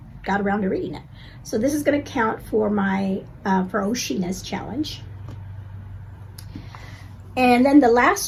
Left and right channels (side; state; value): both; identical; correlation 1.00